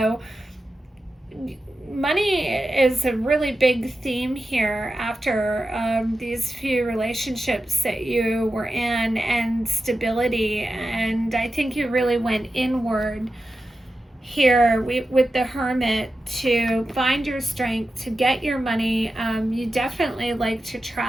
money is a really big theme here after these few relationships that you were in, and stability. And I think you really went inward here with the Hermit to find your strength, to get your money. You definitely like to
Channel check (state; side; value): normal; both; correlation 0.91